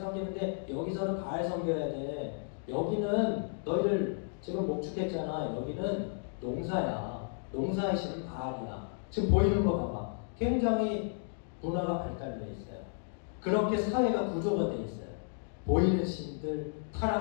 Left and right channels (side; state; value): right; silent; digital silence